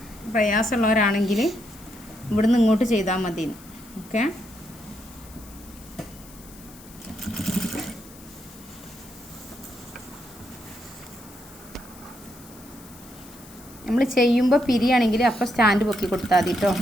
പ്രയാസമുള്ളവരാണെങ്കിൽ ഇവിടുന്ന് ഇങ്ങോട്ട് ചെയ്താൽ മതി. ഓക്കെ. നമ്മൾ ചെയ്യുമ്പോൾ പിരിയാണെങ്കിൽ അപ്പോൾ സ്റ്റാൻഡ് പൊക്കി കൊടുത്താൽ മതി കേട്ടോ.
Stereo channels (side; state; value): left; noise; hiss, 21 dB below the sound